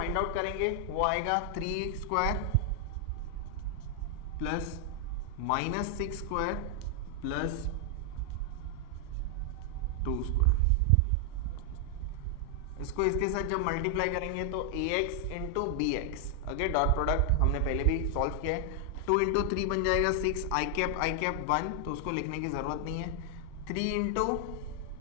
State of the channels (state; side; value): different; both; correlation 0.00